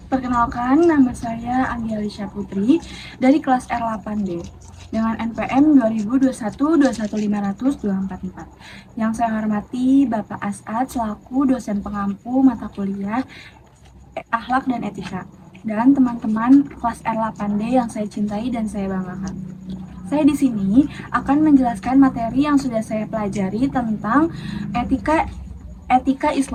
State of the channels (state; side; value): identical; both; correlation 1.00